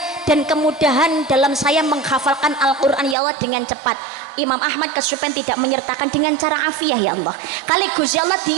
dan kemudahan dalam saya menghafalkan Al-Quran ya Allah dengan cepat. Imam Ahmad kesupen tidak menyertakan dengan cara afiah ya Allah. Kali Gusti Allah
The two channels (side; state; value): left; drops out; at 3.2 s